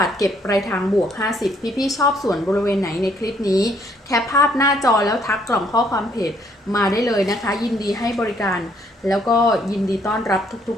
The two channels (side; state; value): both; normal; correlation 0.67